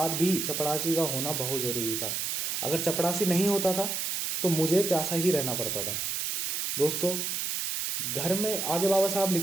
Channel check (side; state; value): right; noise; hiss, 1 dB below the sound